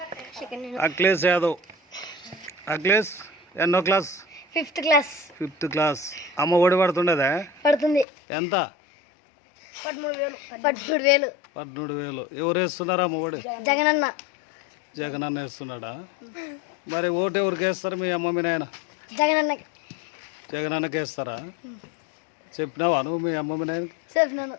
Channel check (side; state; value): right; drops out; at 8.1 s